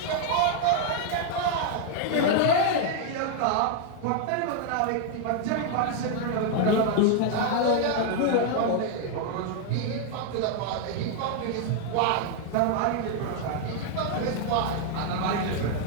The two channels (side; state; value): both; different; correlation 0.00